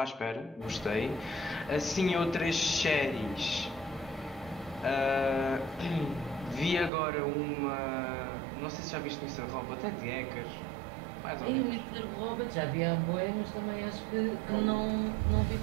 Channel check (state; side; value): drops out; left; at 6.9 s